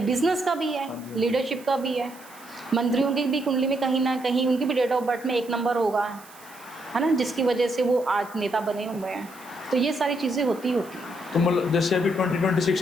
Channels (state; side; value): noise; right; hiss, 22 dB below the sound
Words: बिजनेस का भी है, हाँ जी। लीडरशिप का भी है। मंत्रियों की भी कुंडली में कहीं ना कहीं उनकी भी डेट ऑफ बर्थ में 1 नंबर होगा, है ना, जिसकी वजह से वो आज नेता बने हुए हैं। तो ये सारी चीज़ें होती हैं। तो मतलब जैसे अभी